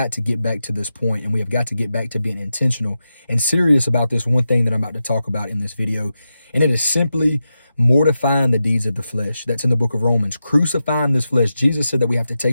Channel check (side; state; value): both; inverted; correlation -0.90